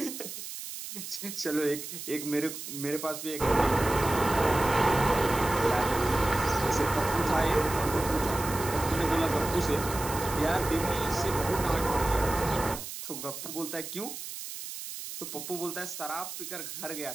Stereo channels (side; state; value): right; noise; hiss, 9 dB below the sound